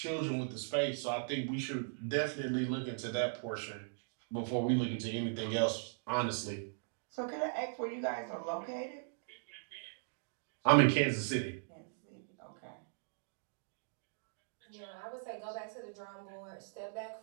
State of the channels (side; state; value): left; silent; digital silence